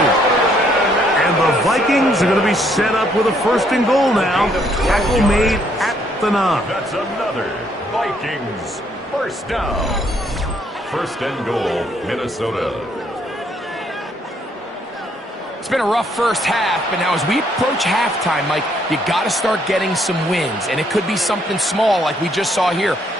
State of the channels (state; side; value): normal; both; correlation 0.69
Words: And the Vikings are going to be set up with a first and goal now. Tackle made at the 9. That's another Vikings first down. First and goal, Minnesota. It's been a rough first half, but now as we approach halftime, Mike, you got to start getting some wins. And it could be something small like we just saw here.